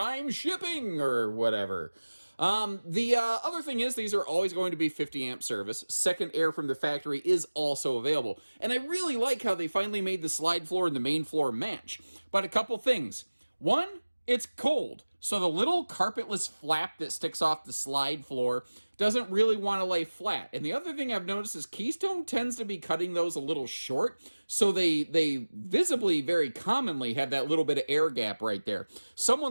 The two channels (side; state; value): both; inverted; correlation -1.00